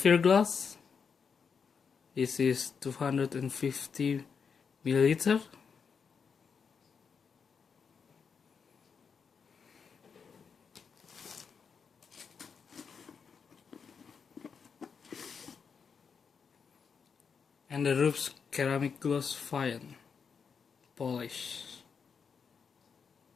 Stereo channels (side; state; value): right; quieter; 6.1 dB